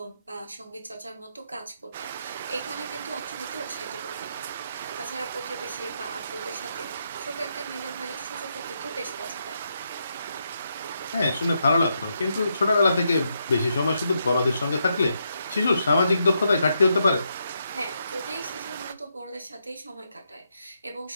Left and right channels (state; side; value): inverted; both; correlation -0.81